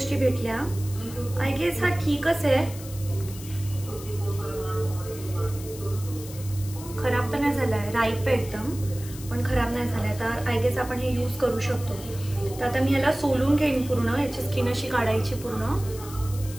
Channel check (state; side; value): noise; left; hiss, 15 dB below the sound